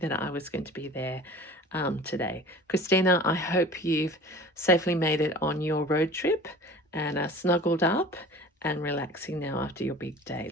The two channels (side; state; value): both; normal; correlation 0.42